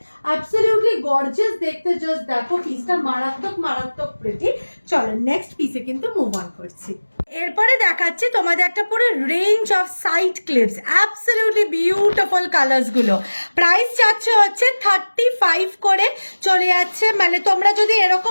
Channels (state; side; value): inverted; both; correlation -1.00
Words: absolutely gorgeous দেখতে, জাস্ট দেখো পিসটা মারাত্মক মারাত্মক প্রিটি। চলো নেক্সট পিসে কিন্তু মুভ অন করছি। এরপরে দেখাচ্ছি তোমাদের একটা পুরো range of side clips, absolutely beautiful colours গুলো। প্রাইস যাচ্ছে হচ্ছে 35 করে চলে যাচ্ছে, মানে তোমরা যদি